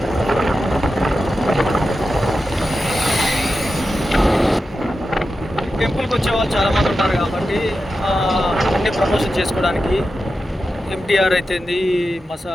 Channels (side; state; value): both; normal; correlation 0.91